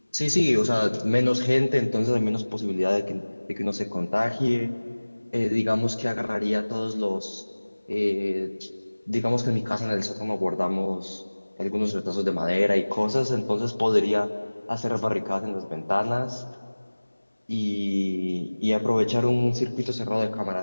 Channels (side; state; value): both; inverted; correlation -1.00